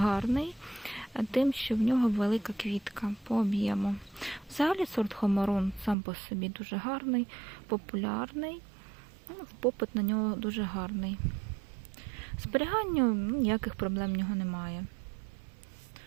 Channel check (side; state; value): left; drops out; at 6.0 s